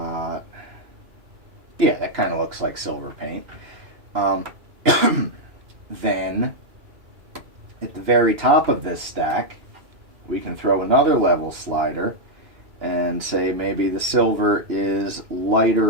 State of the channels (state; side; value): late; left; 2.9 ms